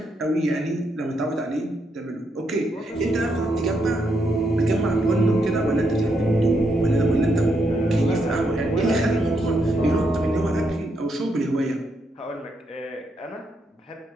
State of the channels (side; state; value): both; normal; correlation 0.78